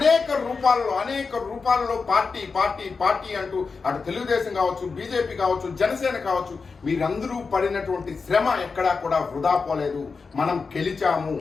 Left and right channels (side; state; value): right; quieter; 4.8 dB